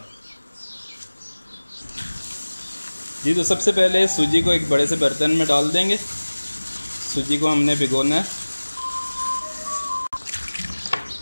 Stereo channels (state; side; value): inverted; both; correlation -1.00